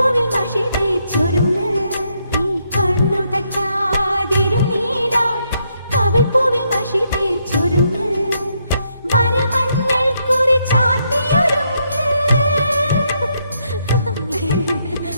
മഷി തേച്ചൊരുങ്ങ് കണ്ണു തട്ടാതിരുന്നീടാൻ കവിൾപ്പൂവിൽ മഷി തേച്ചൊരുങ്ങ് വരമഞ്ഞൾ കുറി ചാർത്തിയൊരുങ്ങ്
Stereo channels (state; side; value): inverted; both; correlation -0.76